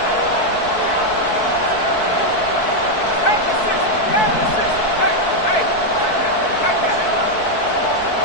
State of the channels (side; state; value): right; late; 4.6 ms